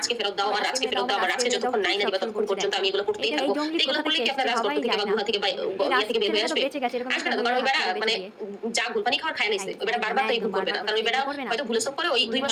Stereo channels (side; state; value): both; identical; correlation 1.00